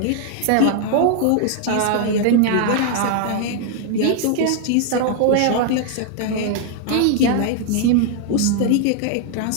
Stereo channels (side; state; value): both; different; correlation 0.00